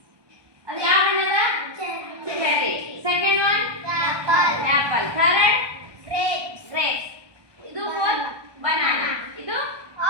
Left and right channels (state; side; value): late; left; 1.2 ms